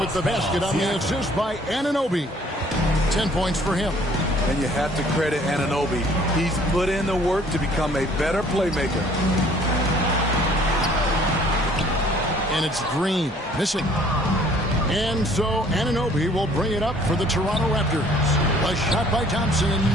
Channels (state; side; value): normal; both; correlation 0.57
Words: the basket on the assist by Anunoby. 10 points for him. And you have to credit Anunoby. He's put in the work to become a better playmaker. And it's Green missing. And so Anunoby will bring it up for the Toronto Raptors. A shot by Thompson and